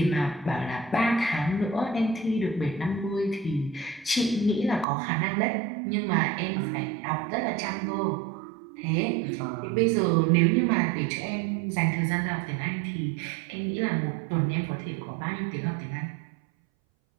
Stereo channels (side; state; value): left; drops out; at 4.9 s